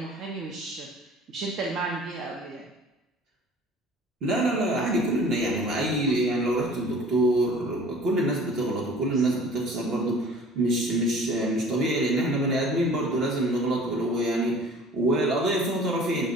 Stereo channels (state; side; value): normal; both; correlation 0.47